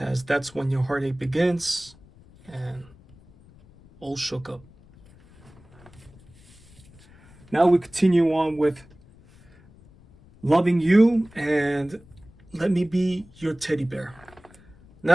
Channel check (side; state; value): left; noise; rumble, 25 dB below the sound